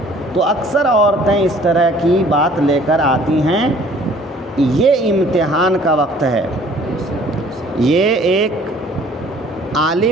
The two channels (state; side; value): normal; both; correlation 0.54